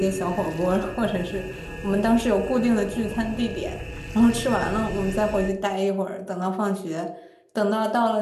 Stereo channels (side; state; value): both; identical; correlation 1.00